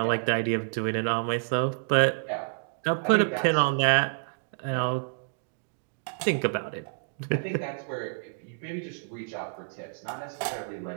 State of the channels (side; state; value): left; silent; digital silence